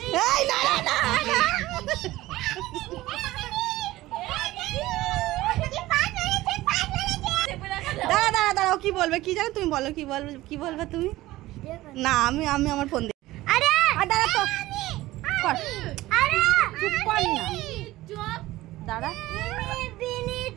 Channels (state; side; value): quieter; left; 17.3 dB